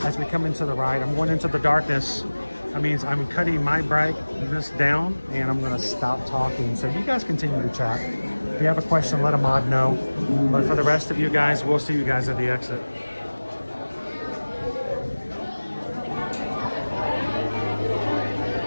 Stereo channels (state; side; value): inverted; both; correlation -1.00